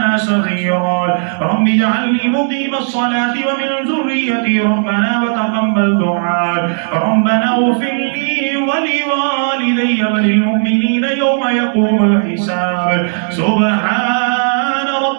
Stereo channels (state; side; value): silent; left; digital silence